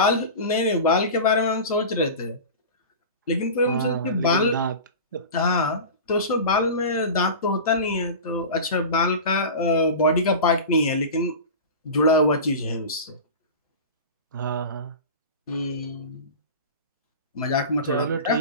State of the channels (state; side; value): inverted; both; correlation -0.30